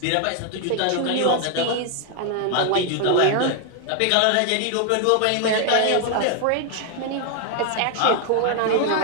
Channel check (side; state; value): both; different; correlation 0.00